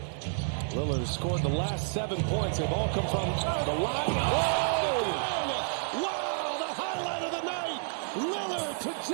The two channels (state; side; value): silent; left; 58 dB below the other